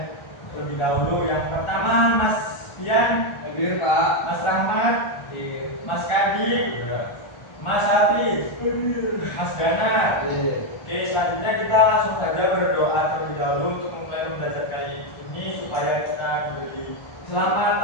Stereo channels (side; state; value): right; late; 1.3 ms